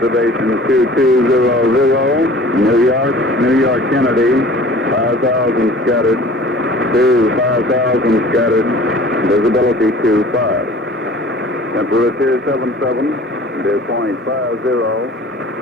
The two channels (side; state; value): both; normal; correlation 0.46